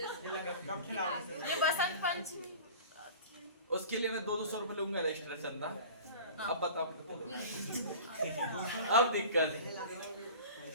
ये बसंत पंचमी उसके लिए मैं 200 रुपए लूंगा एक्स्ट्रा चंदा। अब बताओ अब दिक्कत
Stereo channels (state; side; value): inverted; both; correlation -0.39